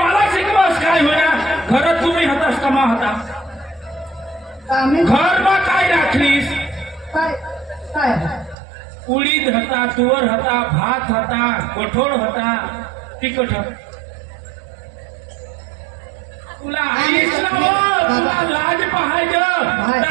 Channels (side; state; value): left; drops out; at 8.6 s